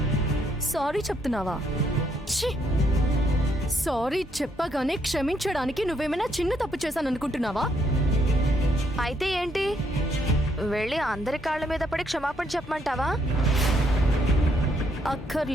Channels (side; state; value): both; normal; correlation 0.72